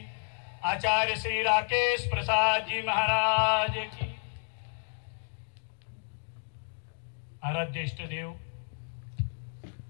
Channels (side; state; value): right; silent; digital silence